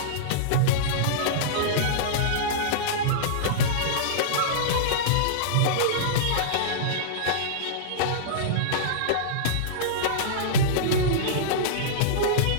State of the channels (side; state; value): both; different; correlation -0.03